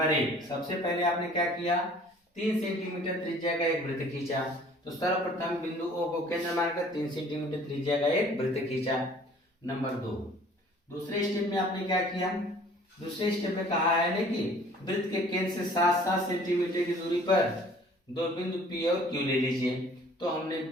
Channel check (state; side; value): normal; both; correlation 0.53